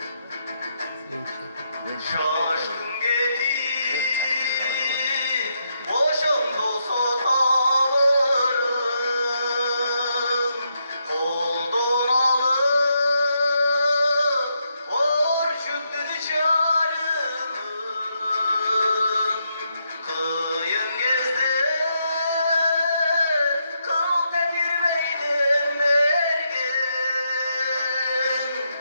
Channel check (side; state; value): both; inverted; correlation -0.80